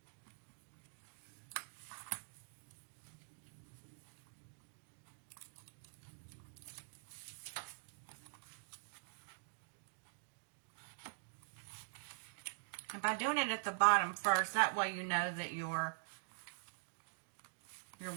And by doing it at the bottom first, that way you know that your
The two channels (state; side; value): silent; left; digital silence